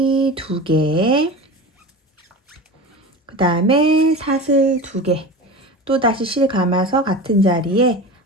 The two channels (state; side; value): normal; both; correlation 0.30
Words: 두 개, 그 다음에 사슬 두 개, 또 다시 실 감아서 같은 자리에